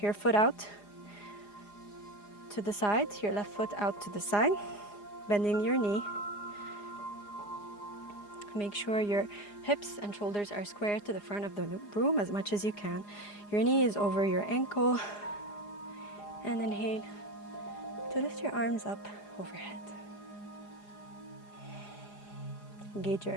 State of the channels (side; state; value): right; late; 4.9 ms